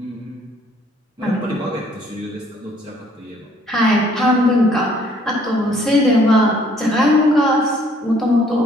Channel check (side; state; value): both; normal; correlation 0.62